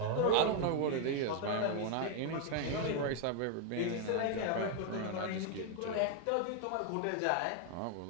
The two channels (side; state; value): both; different; correlation 0.00